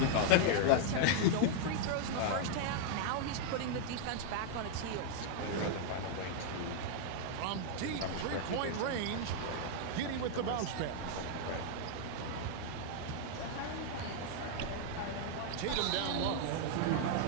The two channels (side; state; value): both; different; correlation -0.01